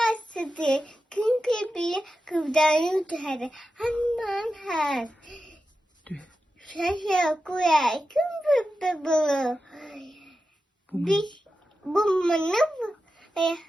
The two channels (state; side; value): normal; both; correlation 0.91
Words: sidi kim pipi kıvdan yutarı haman ha şaşa kuya kim pipi bulu bir bu mana